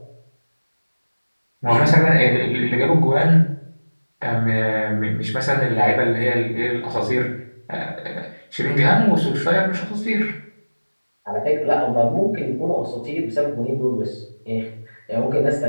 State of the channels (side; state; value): both; inverted; correlation -1.00